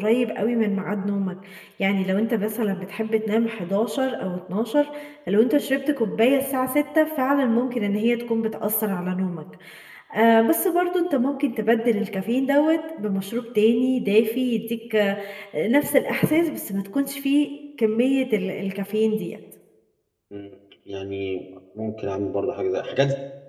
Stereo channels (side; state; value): both; identical; correlation 1.00